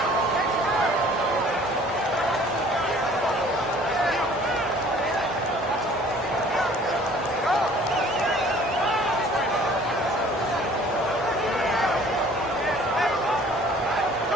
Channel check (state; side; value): normal; both; correlation 0.53